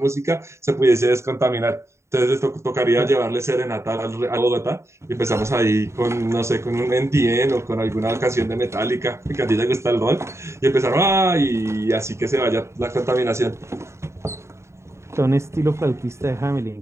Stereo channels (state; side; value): late; left; 0.14 ms